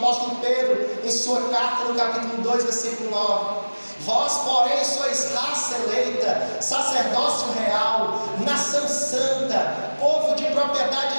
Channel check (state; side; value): inverted; both; correlation -1.00